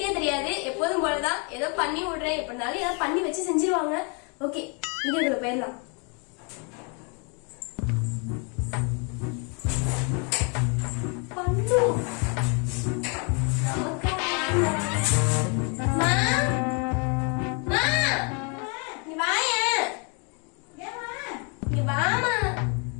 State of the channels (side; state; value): right; quieter; 35.7 dB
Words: தெரியாது. எப்போதும் போலதான் ஏதோ பண்ணி விடுறேன். எப்படினாலும் ஏதோ பண்ணி வச்சு செஞ்சிருவாங்க. ஓகே, வீடியோக்குள்ள போயிடலாம்.